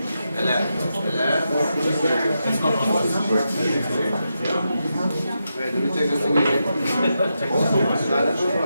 Hello. It's not on. Wait, let me take this thing again.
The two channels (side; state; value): both; inverted; correlation -0.86